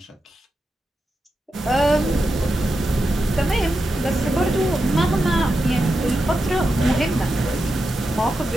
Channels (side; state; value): both; normal; correlation 0.88